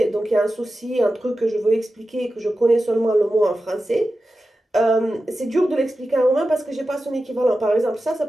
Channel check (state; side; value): normal; both; correlation 0.93